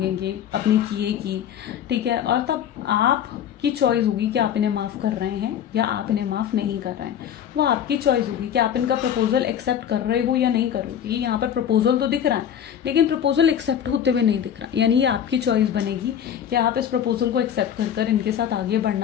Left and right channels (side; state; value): right; quieter; 9.3 dB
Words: अपने किए की, ठीक है। और तब आपकी चॉइस होगी कि आप इन्हें माफ़ कर रहे हैं या आप इन्हें माफ़ नहीं कर रहे हैं। वो आपकी चॉइस होगी कि आप इनका प्रपोजल एक्सेप्ट कर रहे हो या नहीं कर रहे हो। क्योंकि यहाँ पर प्रपोजल तो दिख रहा है लेकिन प्रपोजल एक्सेप्ट होते हुए नहीं दिख रहा, यानी ये आपकी चॉइस बनेगी कि आप इस प्रपोजल को एक्सेप्ट कर कर इनके साथ आगे